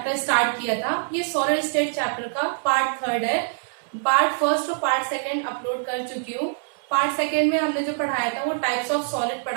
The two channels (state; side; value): silent; left; 62 dB below the other